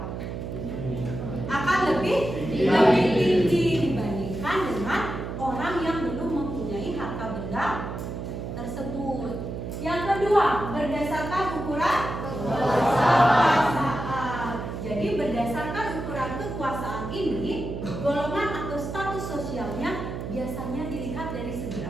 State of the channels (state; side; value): noise; right; hum, 6 dB below the sound